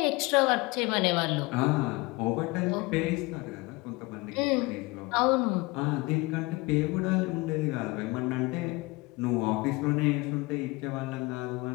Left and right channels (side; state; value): right; quieter; 23.5 dB